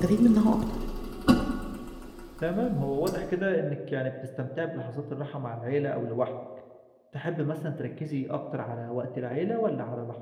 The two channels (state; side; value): identical; both; correlation 1.00